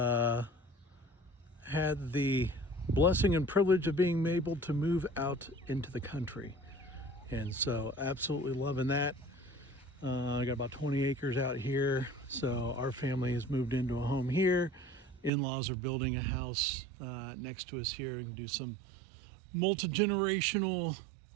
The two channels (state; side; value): drops out; left; at 15.3 s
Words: had the blessing and privilege of being able to move out into the country, and so absolutely loving that. I got about 20 acres out here, so our family has moved into a home here. In-laws are building a house next to us here and do some multi-generational